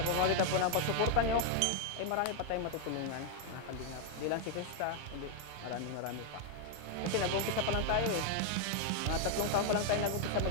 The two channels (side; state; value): both; different; correlation 0.01